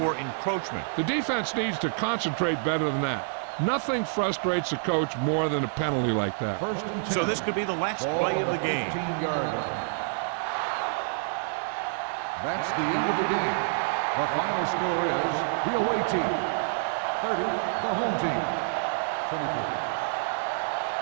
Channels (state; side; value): silent; left; digital silence